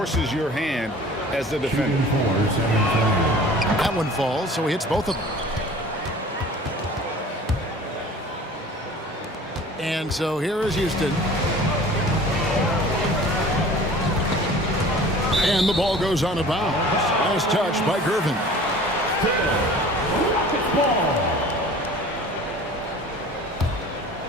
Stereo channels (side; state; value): both; normal; correlation 0.44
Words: your hand as the defender. That one falls, so he hits both of them. And so here is Houston. And the ball goes on a bounce. Nice touch by Gervin.